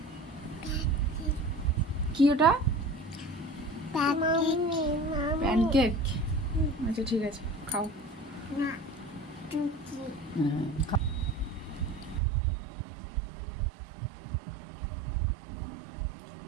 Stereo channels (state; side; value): drops out; left; at 12.2 s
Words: কি ওটা? প্যানকেক। আচ্ছা ঠিক আছে, খাও।